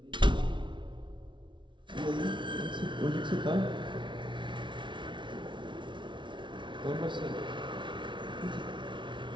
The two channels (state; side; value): late; left; 0.24 ms